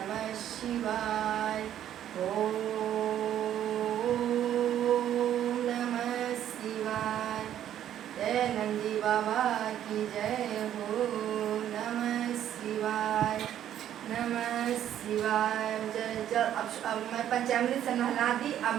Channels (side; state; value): left; quieter; 10.9 dB